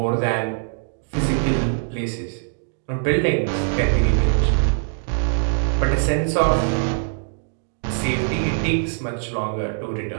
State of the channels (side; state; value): left; silent; digital silence